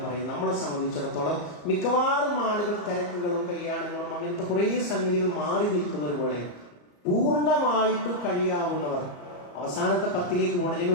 പറയുന്നത് നമ്മളെ സംബന്ധിച്ചിടത്തോളം മിക്കവാറും ആളുകൾ തിരക്കുകളും കല്യാണങ്ങളും അങ്ങനത്തെ കുറേ സംഗതികൾ മാറി നിൽക്കുന്ന ഒരു വേളയിൽ പൂർണ്ണമായിട്ട് കഴിയാവുന്നവർ അവസാനത്തെ 10ലേക്ക് പോകണം. ഞാൻ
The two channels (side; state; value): right; late; 34 ms